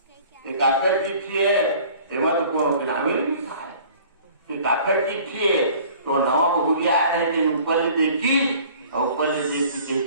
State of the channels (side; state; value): both; inverted; correlation -0.49